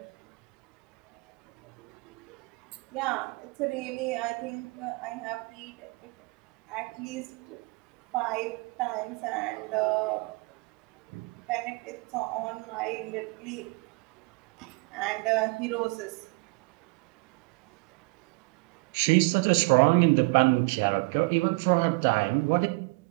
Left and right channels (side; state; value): left; quieter; 27.4 dB